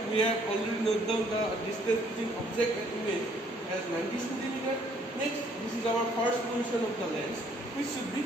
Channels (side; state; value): both; normal; correlation 0.64